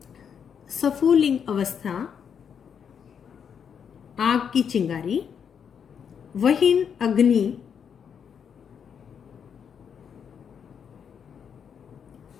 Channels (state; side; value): quieter; right; 7.4 dB